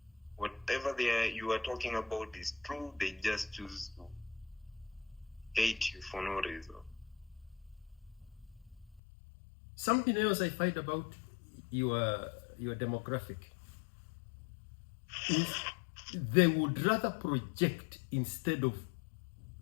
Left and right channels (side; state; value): right; drops out; at 9.0 s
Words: Whatever you are talking about is true. They just choose to hate you for no reason. Something else I find about your demographic is they would rather project instead of